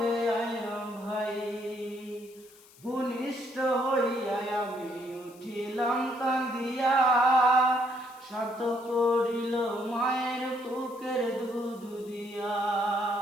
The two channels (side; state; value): left; noise; hiss, 25 dB below the sound